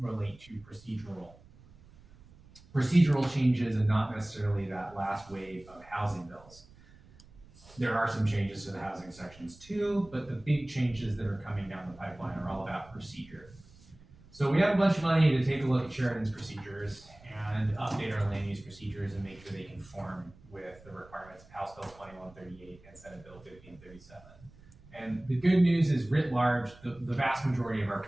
to procedural changes and not necessarily that last wave of housing bills. There are some changes to the housing sections too, but the big changes that are coming down the pipeline are all about procedure. So we have a bunch of money to take a look at Sheridan's procedures and update our land use procedures and make sure they conform with the requirements of House Bill 2138 and Senate Bill 1537. And the good news is, writ large, the vast majority of our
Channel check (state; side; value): noise; right; rumble, 24 dB below the sound